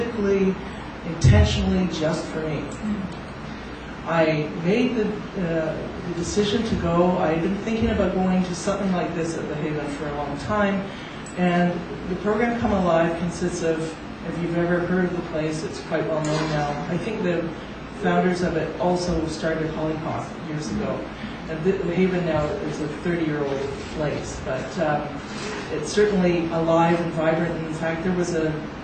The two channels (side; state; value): both; identical; correlation 1.00